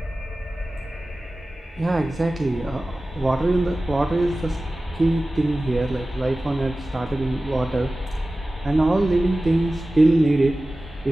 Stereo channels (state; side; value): normal; both; correlation 0.96